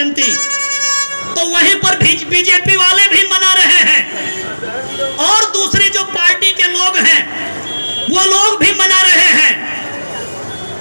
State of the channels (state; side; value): inverted; both; correlation -1.00